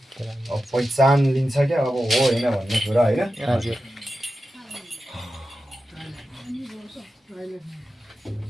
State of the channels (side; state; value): both; normal; correlation 0.92